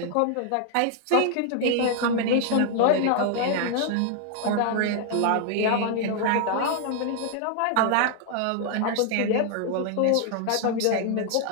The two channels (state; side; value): different; both; correlation 0.00